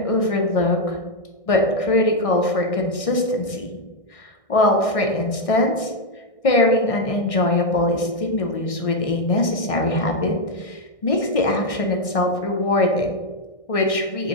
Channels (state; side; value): late; right; 1.6 ms